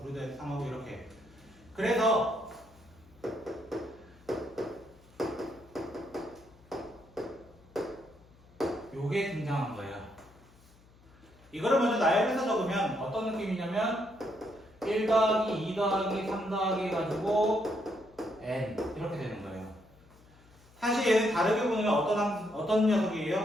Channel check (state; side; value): noise; left; hum, 27 dB below the sound